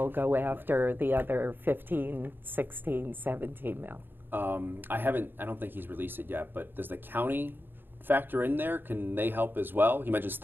go after the other 15, 16, 17 mil. I don't think he's released it yet, but does the county factor in there? Can they help as well? You mentioned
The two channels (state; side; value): late; left; 0.098 ms